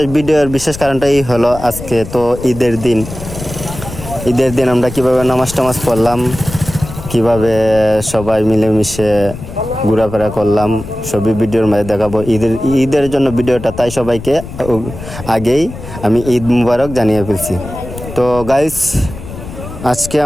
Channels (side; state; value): left; noise; rumble, 11 dB below the sound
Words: ভিডিওর বিশেষ কারণটাই হলো আজকে তো ঈদের দিন। ঈদের দিন আমরা কিভাবে নামাজ টামাজ পড়লাম, কিভাবে সবাই মিলেমিশে ঘোরাফেরা করলাম, সবই ভিডিওর মাঝে দেখাবো। ঈদের জন্য ভিডিওটা, তাই সবাইকে আগেই আমি ঈদ মুবারক জানিয়ে ফেলছি। তো গাইস, আজকে